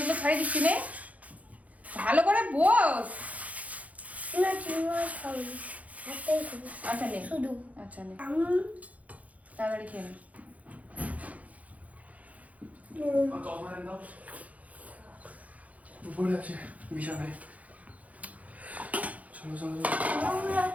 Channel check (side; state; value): left; late; 0.070 ms